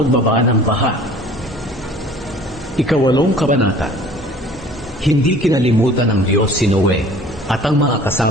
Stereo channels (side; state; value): both; normal; correlation 0.49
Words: ng baha. Ikawalong kabanata. Hindi kinalimutan ng Diyos si Noe at ang mga